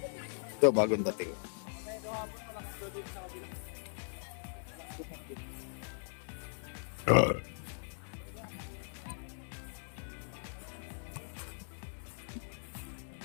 Ito, bagong dating.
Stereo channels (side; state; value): right; silent; digital silence